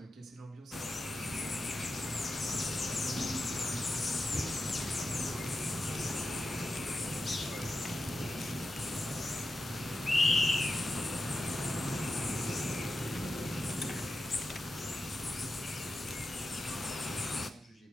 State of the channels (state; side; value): normal; both; correlation 0.90